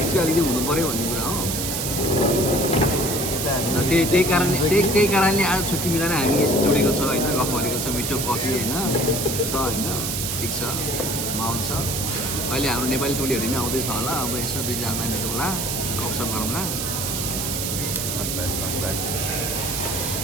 चाहिँ अलिकति हुनु पऱ्यो भन्ने कुरा हो। त्यही कारणले आज छुट्टी मिलाएर हामी यस्तो जोडेको छ होइन। गफ गरेको छ, मिठो कफी होइन छ होइन। ठिक छ माहौल छ अहिले हाम्रो नेपाली टोलीहरू नै आउँदैछ होला अब यसो दुईजना भेटौँ होला गफसफ गरौँला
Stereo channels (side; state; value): right; noise; hiss, 2 dB below the sound